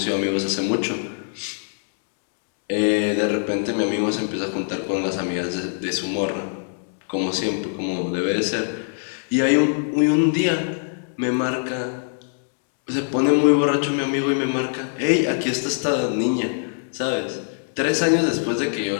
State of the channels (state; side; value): silent; right; digital silence